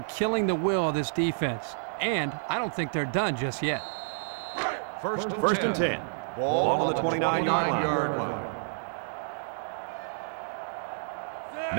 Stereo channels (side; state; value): left; silent; digital silence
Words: killing the will of this defense. And I don't think they're done just yet. First and 10. Ball on the 29-yard line.